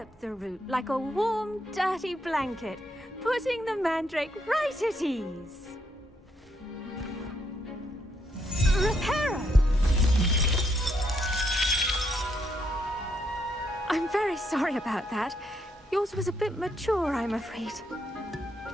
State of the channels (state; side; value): normal; both; correlation 0.76